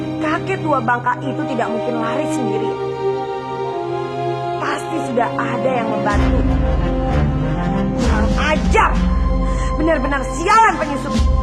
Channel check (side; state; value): both; identical; correlation 1.00